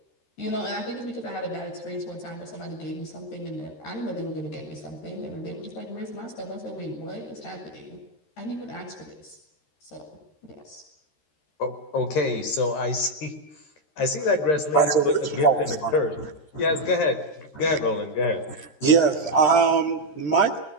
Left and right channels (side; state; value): right; late; 13 ms